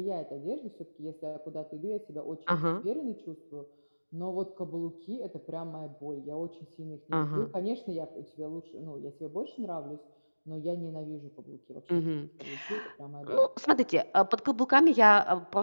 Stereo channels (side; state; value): both; inverted; correlation -1.00